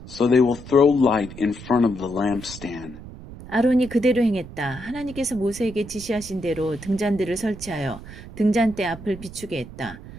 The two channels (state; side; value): noise; right; rumble, 14 dB below the sound